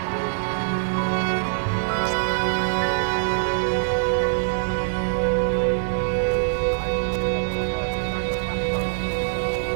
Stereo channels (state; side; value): silent; left; digital silence